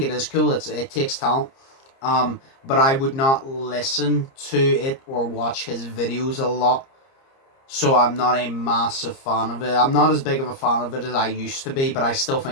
it is cool. It takes talent. But I would not listen to it or watch his videos a lot. So I'm not a massive fan of it. I'm not as big of a fan of it as I used to be, but I still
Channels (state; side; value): late; right; 30 ms